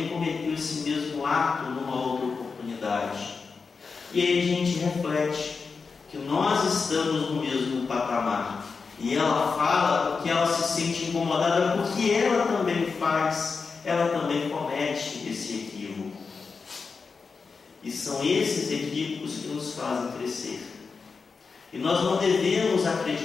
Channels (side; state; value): right; quieter; 4.9 dB